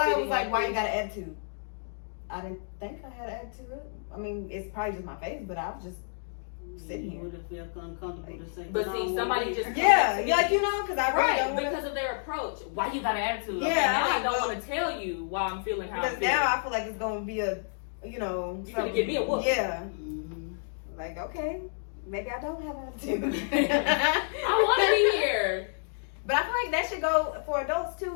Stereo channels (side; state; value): right; silent; digital silence